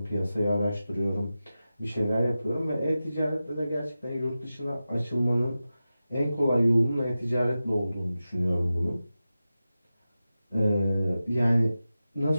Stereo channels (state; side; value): inverted; both; correlation -0.93